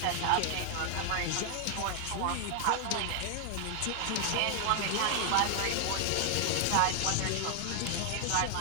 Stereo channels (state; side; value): different; both; correlation 0.00